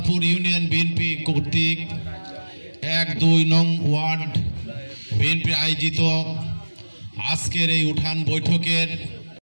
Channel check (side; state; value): both; inverted; correlation -1.00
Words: ইউনিয়ন বিএনপি কর্তৃক ১-২ নং ওয়ার্ড বিএনপি আয়োজিত আজকের এই উঠান বৈঠকের